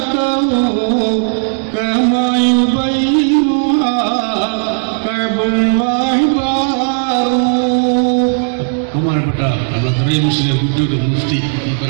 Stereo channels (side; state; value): left; silent; digital silence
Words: كما يبينها كعب واحبار. ബഹുമാനപ്പെട്ട മുസ്ലിം മുഫ്തി